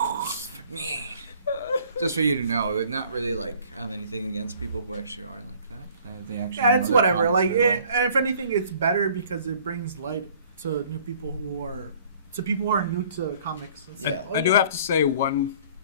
Just for you to know, it would not really like have anything against people who actually are like that. They actually Yeah, know it's their whatever. comics Like, very well. and if anything, it's better because it brings light to new people who are new to comics. It's Yeah. like, I do have to say one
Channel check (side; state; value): both; inverted; correlation -0.54